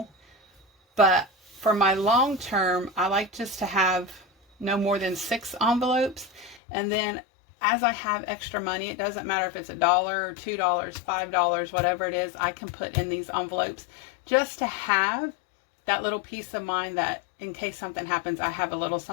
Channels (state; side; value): drops out; right; at 6.6 s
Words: But for my long term, I like just to have no more than 6 envelopes, and then as I have extra money, it doesn't matter if it's $1 or $2, $5, whatever it is, I can put in these envelopes just to have that little peace of mind that in case something happens, I have a little